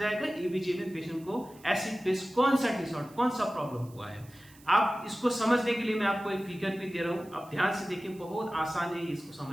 एबीजी में पेशेंट को एसिड बेस कौन सा डिसऑर्डर, कौन सा प्रॉब्लम हुआ है। आप इसको समझने के लिए मैं आपको एक फिगर भी दे रहा हूं, आप ध्यान से देखिए, बहुत आसान है इसको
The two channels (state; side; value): noise; right; hiss, 25 dB below the sound